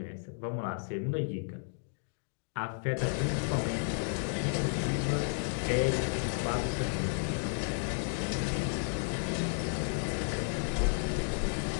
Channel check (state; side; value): silent; right; digital silence